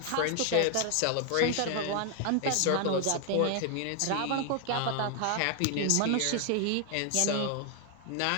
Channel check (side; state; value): both; different; correlation 0.00